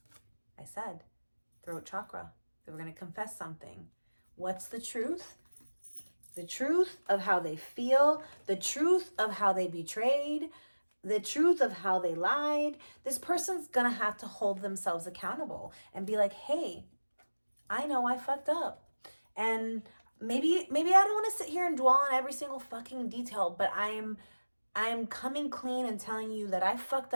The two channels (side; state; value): both; inverted; correlation -1.00